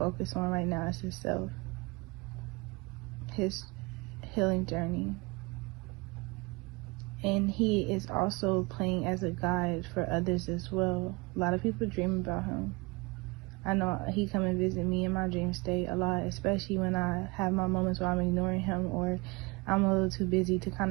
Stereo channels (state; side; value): quieter; left; 25.9 dB